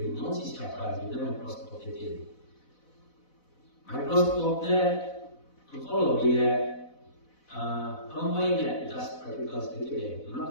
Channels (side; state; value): right; late; 4.0 ms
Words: nama siapa di dalam mikroskop itu. Mikroskop ni kalau dia combine das particles together,